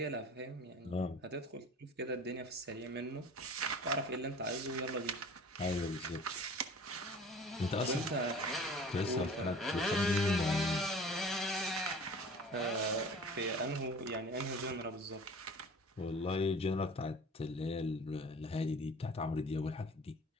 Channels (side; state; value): both; normal; correlation 0.44